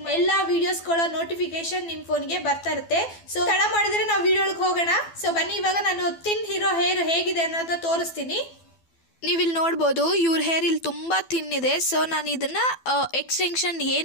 ಮಾಡಿ ಎಲ್ಲ ವೀಡಿಯೋಸ್ಗಳ ನೋಟಿಫಿಕೇಶನ್ ನಿಮ್ಮ ಫೋನ್ಗೆ ಬರ್ತಾ ಇರುತ್ತೆ. ಸೊ ತಡ ಮಾಡಿದರೆ ನಾವು ವಿಡಿಯೋಗೆ ಹೋಗೋಣ. ಸೊ ಬನ್ನಿ, ಇವಾಗ ನಾನು ತಿನ್ ಹೀರೋ ಹೇರ್ ಹೇಗಿದೆ ಅನ್ನೋದನ್ನ ತೋರಿಸ್ತೀನಿ. ನೀವಿಲ್ಲಿ ನೋಡ್ಬೋದು, ಇವ್ರ ಹೇರ್ ಇಲ್ಲಿ ತುಂಬ ತಿನ್ನಿದೆ. ಸೊ ನಾನು ಇದನ್ನು ಎಕ್ಸ್ಟೆನ್ಷನ್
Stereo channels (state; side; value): late; right; 12 ms